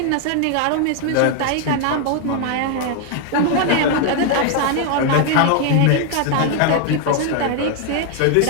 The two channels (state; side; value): different; both; correlation 0.00